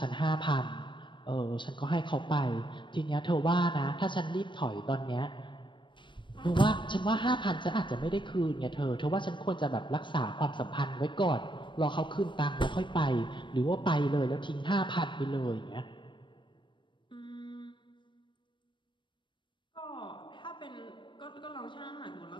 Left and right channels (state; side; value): late; right; 0.23 ms